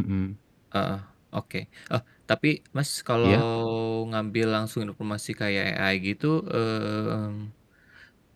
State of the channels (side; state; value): both; identical; correlation 1.00